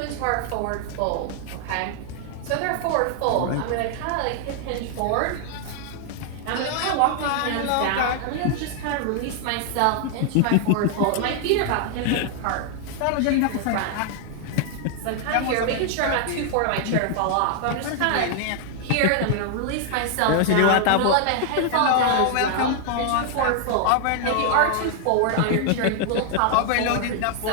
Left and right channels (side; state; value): both; different; correlation 0.00